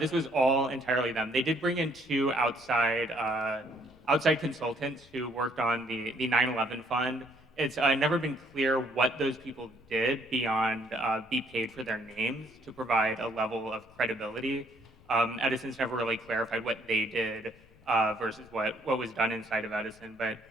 was all entirely them. They did bring in two outside consultants who worked on the 9/11 fund. It's never been clear what those people did beyond be paid for their names to provide a level of credibility. Edison's never really clarified what they did versus what was done inside of Edison.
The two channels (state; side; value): noise; left; rumble, 27 dB below the sound